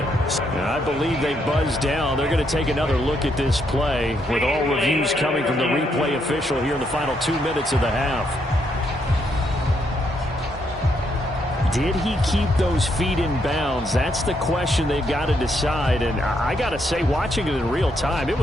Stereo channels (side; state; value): both; normal; correlation 0.76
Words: And I believe they buzzed down. They're going to take another look at this play with all reviews coming from the replay official here in the final 2 minutes of the half. Did he keep those feet in bounds? That's the question they've got to decide. And I got to say, watching it in real time, it